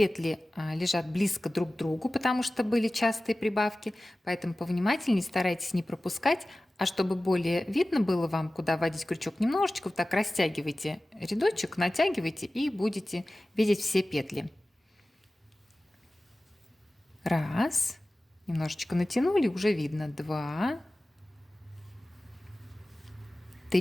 лежат близко друг к другу, потому что были частые прибавки, поэтому повнимательнее старайтесь не пропускать, а чтобы более видно было вам, куда вводить крючок, немножечко вот так растягивайте рядочек, натягивайте и будете видеть все петли. Раз, немножечко натянули, уже видно. 2,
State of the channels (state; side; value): normal; both; correlation 0.97